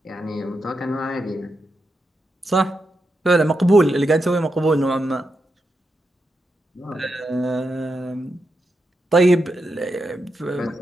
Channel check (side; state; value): both; normal; correlation 0.86